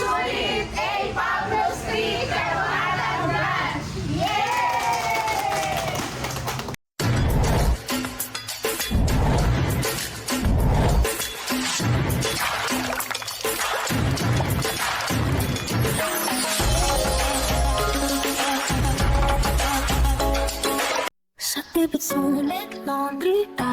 A. Pablo Street, Caloocan Branch! Yay! Sa tipid sulit, laundry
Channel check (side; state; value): both; identical; correlation 1.00